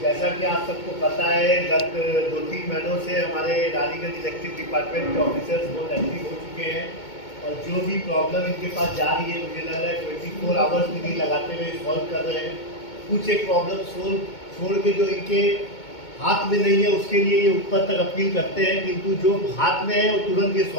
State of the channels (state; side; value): late; right; 2.2 ms